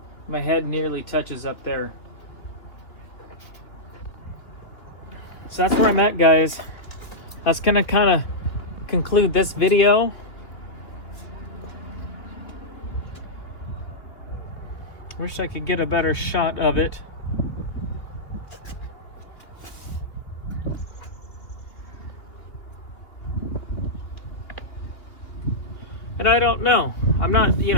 my head nearly touches up there. So that's where I'm at, guys. That's gonna kind of conclude this video. Wish I could get a better shot of it. And I don't know. I'm not, you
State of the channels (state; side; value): late; right; 2.7 ms